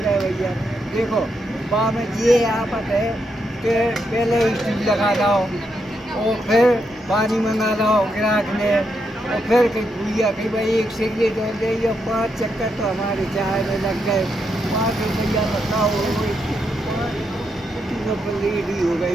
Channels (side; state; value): both; normal; correlation 0.81